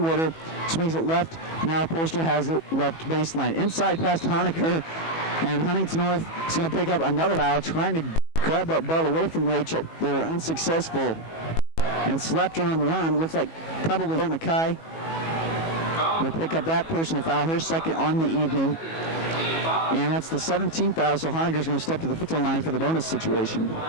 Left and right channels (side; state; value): right; late; 18 ms